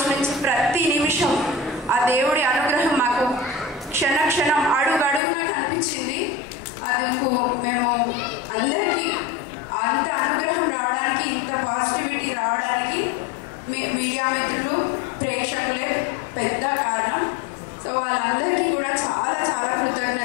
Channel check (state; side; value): drops out; right; at 5.2 s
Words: నుంచి ప్రతి నిమిషం ఆ దేవుడి అనుగ్రహం మాకు క్షణక్షణం అడుగడుగున కనిపించింది. అది మేము అందరికీ అంత అనుగ్రహం రావడానికి, ఇంత పాజిటివిటీ రావడానికి మీడియా మిత్రులు, ప్రేక్షకులే పెద్ద కారణం. సో వాళ్ళందరికీ కూడా చాలా చాలా